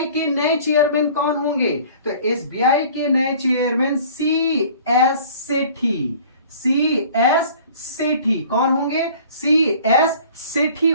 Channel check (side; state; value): both; inverted; correlation -0.49